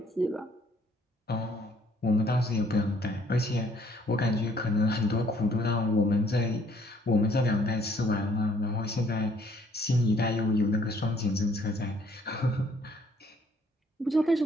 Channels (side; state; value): both; normal; correlation 0.63